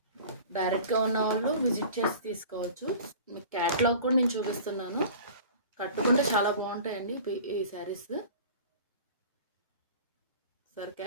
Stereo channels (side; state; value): both; inverted; correlation -0.41